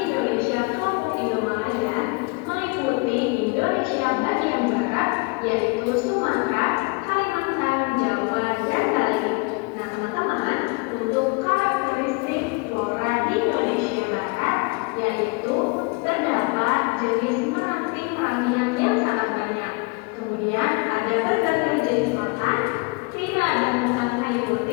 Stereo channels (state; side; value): quieter; right; 30.6 dB